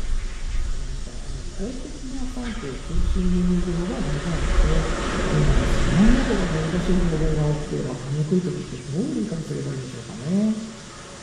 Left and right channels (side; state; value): both; identical; correlation 1.00